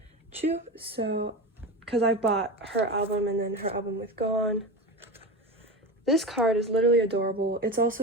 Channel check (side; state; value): both; normal; correlation 0.24